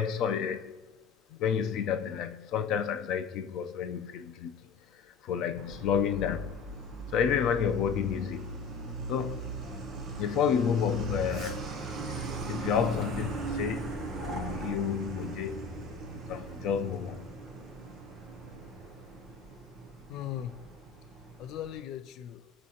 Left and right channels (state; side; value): quieter; right; 5.5 dB